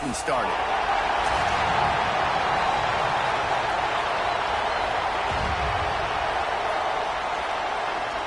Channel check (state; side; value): identical; both; correlation 1.00